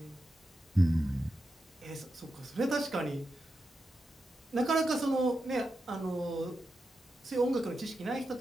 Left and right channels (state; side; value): normal; both; correlation 0.88